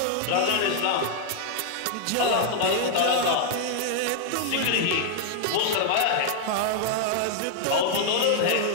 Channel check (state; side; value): different; both; correlation -0.01